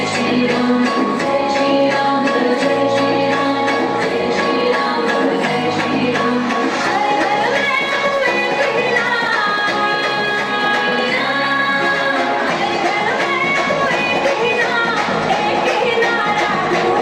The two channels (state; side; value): identical; both; correlation 1.00